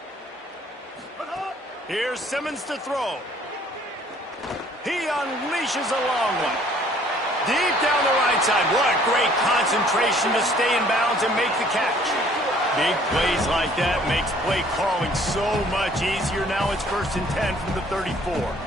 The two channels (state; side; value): normal; both; correlation 0.58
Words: Here's Simmons to throw. He unleashes a long one. Deep down the right side. What great concentration to stay in bounds and make the catch. Big plays like that makes play calling so much easier. Now it's 1st and 10 from the 34.